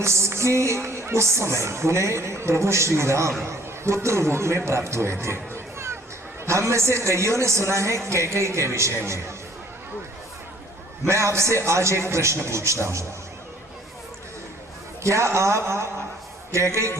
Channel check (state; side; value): normal; both; correlation 0.57